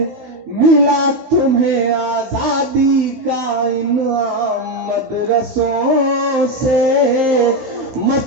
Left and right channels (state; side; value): late; left; 16 ms